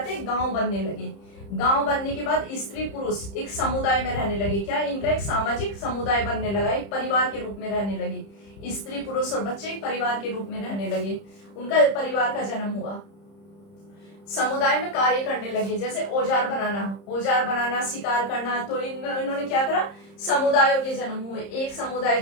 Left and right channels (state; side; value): late; right; 30 ms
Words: गांव बनने लगे। गांव बनने के बाद स्त्री पुरुष एक समुदाय में रहने लगे। क्या, इनका एक सामाजिक समुदाय बनने लगा, एक परिवार के रूप में रहने लगे। स्त्री पुरुष और बच्चे एक परिवार के रूप में रहने लगे, उनका परिवार का जन्म हुआ। समुदाय में कार्य करने लगे, जैसे औजार बनाना, शिकार करना। तो इन्होंने क्या करा, समुदायों के जन्म हुए। एक